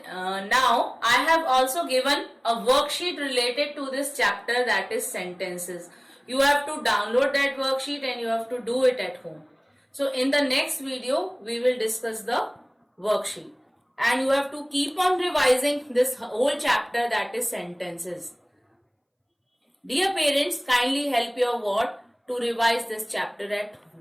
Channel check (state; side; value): identical; both; correlation 1.00